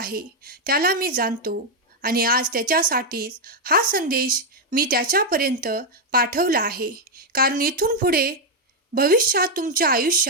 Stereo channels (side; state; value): both; normal; correlation 0.01